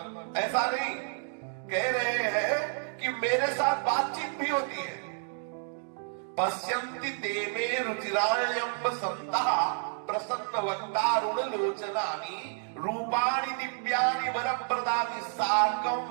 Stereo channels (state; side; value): silent; left; 57 dB below the other